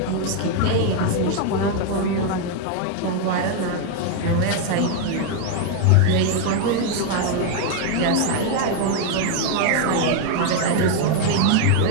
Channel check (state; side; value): different; both; correlation 0.01